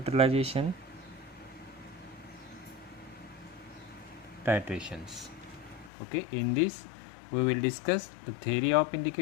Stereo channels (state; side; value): drops out; right; at 5.9 s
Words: titrations. Okay, in this we will discuss the theory of